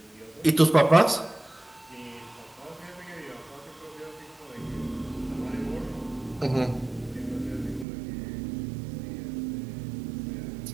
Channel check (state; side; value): drops out; left; at 7.9 s